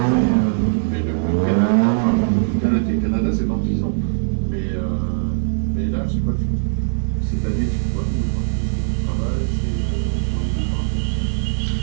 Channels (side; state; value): left; silent; digital silence